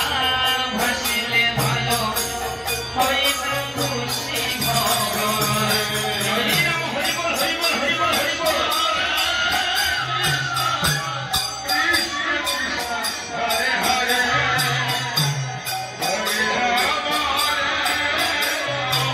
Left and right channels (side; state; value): both; identical; correlation 1.00